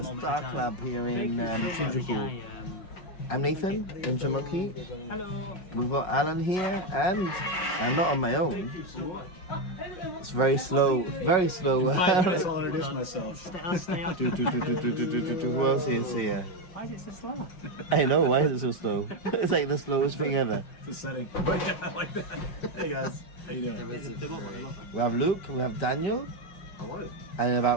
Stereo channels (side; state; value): right; late; 5.5 ms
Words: Star Club here in Shinjuku. I'm Nathan, Ninja Monkey. Hello. We've got Alan here, and I'm not on my own. It's very slow, very slow. I'll introduce myself. Stay on. Who else is here? Why is it so slow? I know, why is it so slow? It's like the slowest thing ever. It's a setting. But yeah, I like that. Hey guys, how you doing? We have Luke, we have Daniel, and in